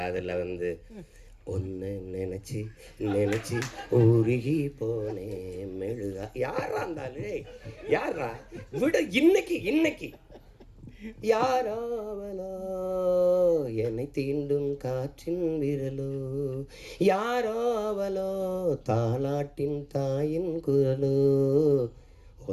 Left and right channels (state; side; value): identical; both; correlation 1.00